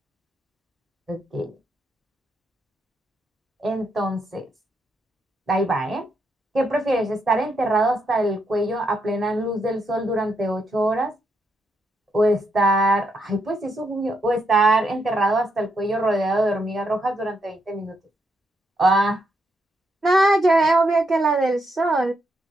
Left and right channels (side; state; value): both; normal; correlation 0.79